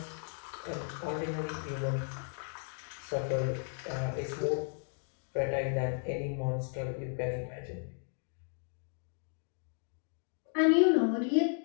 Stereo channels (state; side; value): silent; right; 55 dB below the other